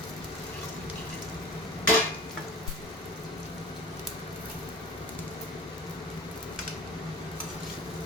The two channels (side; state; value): both; normal; correlation 0.40